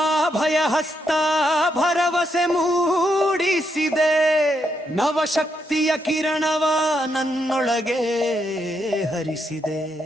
ಭಯ ಹಸ್ತ ಭರವಸೆ ಮೂಡಿಸಿದೆ, ನವಶಕ್ತಿಯ ಕಿರಣವ ನನ್ನೊಳಗೆ ಹರಿಸಿದೆ.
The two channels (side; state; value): both; normal; correlation 0.79